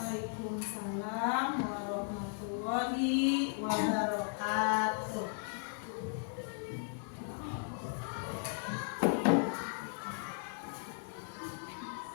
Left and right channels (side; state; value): right; silent; 54 dB below the other